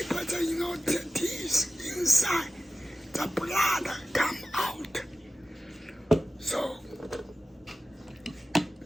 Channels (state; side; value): normal; both; correlation 0.94